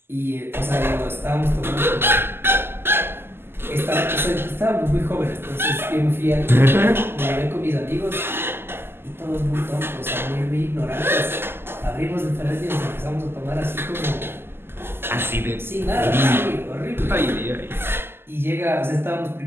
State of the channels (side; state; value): left; late; 0.11 ms